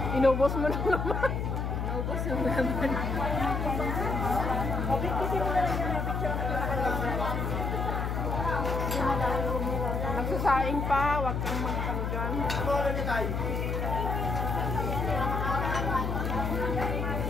Inubos mo na naman. Naubos yung naman. Okay, kasi mo na lang yung picture na Nagsasaing pa, wag kang mag-ano dyan. Ano niya tayo?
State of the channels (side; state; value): left; noise; hum, 1 dB below the sound